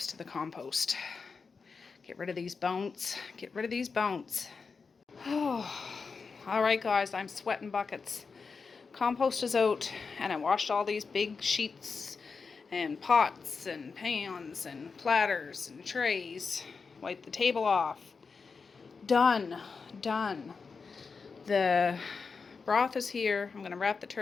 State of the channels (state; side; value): quieter; right; 5.0 dB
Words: to the compost. Get rid of these bones. Get rid of these bones. Oh. All right, guys. I'm sweating buckets. Compost is out, and I washed all these big sheets and pots and pans and platters and trays. Wiped the table off. Done. Done. The broth is here. I'm going to wrap the